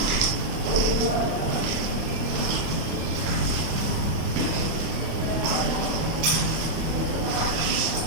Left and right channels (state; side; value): late; left; 25 ms